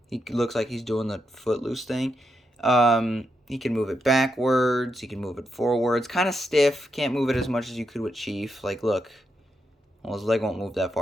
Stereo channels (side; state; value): both; normal; correlation 0.83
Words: He looks like he's doing the footloose thing. He can move it backwards. He can move it forwards. Kind of stiff. Can't move it as much as you could with Chief. Like, look. Well, his leg won't move that